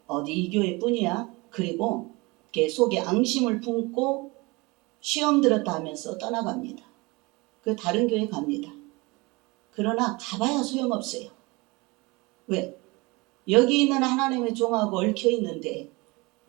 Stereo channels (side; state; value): left; quieter; 24.7 dB